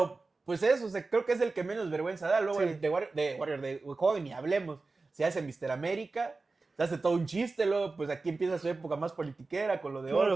pues eso, o sea, creo que es el que menos vergüenza da. Luego el de Hogan ni hablemos. Se hace Mr. América, se hace todo un chiste, luego pues aquí empieza su época más politiquera con lo de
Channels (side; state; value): left; quieter; 3.7 dB